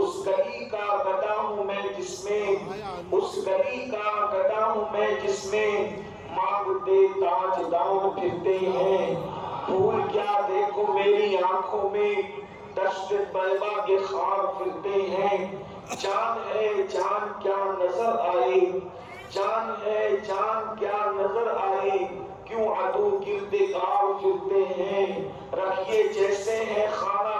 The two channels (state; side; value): identical; both; correlation 1.00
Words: گلی کا گدا ہوں میں جس میں، اس گلی کا گدا ہوں میں جس میں مانگتے تاجدار پھرتے ہیں۔ پھول کیا دیکھو میری آنکھوں میں، دشت طیبہ کے خار پھرتے ہیں۔ جان ہے جان کیا نظر آئے، جان ہے جان کیا نظر آئے، کیوں عدو گرد کار پھرتے ہیں۔ رکھیے جیسے ہیں